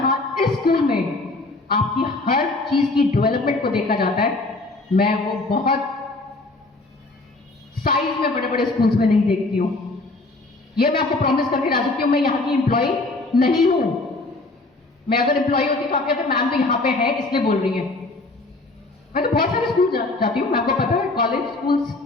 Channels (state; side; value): quieter; right; 3.1 dB